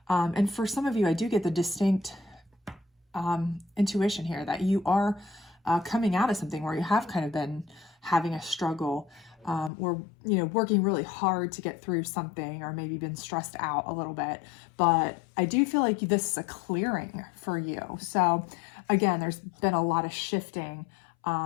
and for some of you, I do get the distinct intuition here that you are coming out of something where you have kind of been having a struggle or, you know, working really hard to get through something, or maybe been stressed out a little bit. But I do feel like this is a clearing for you. So again, there's been a lot of shifting,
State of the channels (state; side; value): drops out; right; at 9.7 s